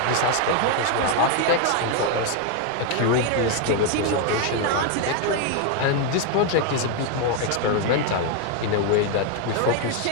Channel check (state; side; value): different; both; correlation 0.01